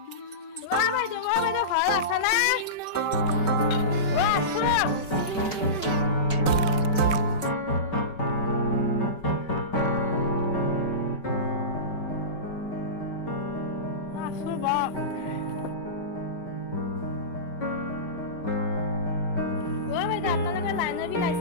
ঘৰত আছা না আছো আপোনালোকে লাইনৰ বিল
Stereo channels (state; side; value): late; right; 5.2 ms